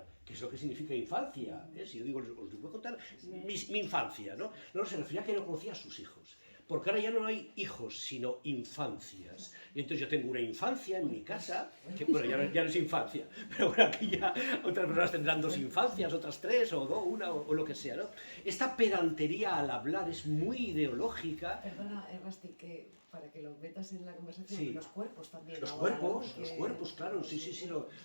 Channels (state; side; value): inverted; both; correlation -1.00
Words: que es lo que significa infancia, ¿eh? Si yo digo, os voy a contar mi infancia, ¿no? No, se refería a que no conocía a sus hijos. Porque ahora ya no hay hijos, sino infancias. Y entonces yo tengo una infancia en mi casa, que bueno, ya no es infancia, pero bueno, aquí ya otras personas tendrán 2 infancias, otras 3, o 2, una, o lo que sea, ¿no? Esta pedantería al hablar es muy ideológica. Perdona, Rasti, que para que lo metas en la conversación, sí. Los cuerpos también. Los ahora, cuerpos, claro, sí,